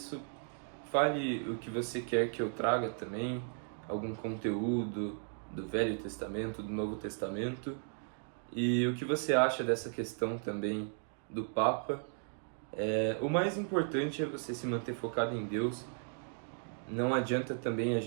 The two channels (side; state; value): left; silent; 54 dB below the other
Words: fale o que você quer que eu traga também, algum conteúdo do Velho Testamento, do Novo Testamento, e o que você acha dessa questão também do Papa. O mais importante é você se manter focado em Deus. Não adianta também a